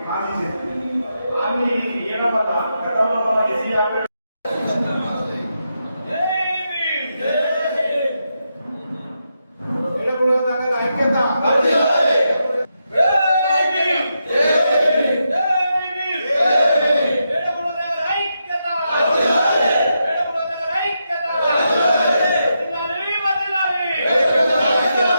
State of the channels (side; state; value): both; inverted; correlation -0.84